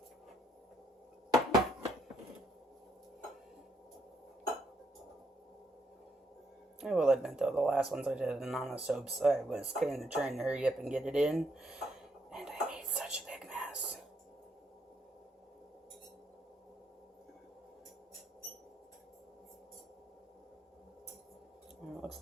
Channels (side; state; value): both; normal; correlation 0.74